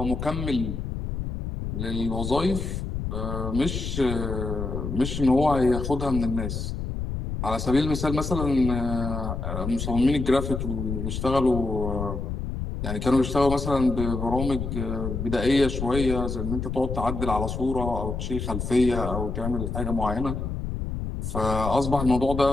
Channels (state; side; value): noise; left; rumble, 4 dB below the sound